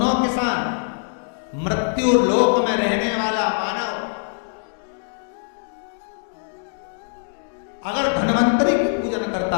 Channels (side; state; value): right; silent; digital silence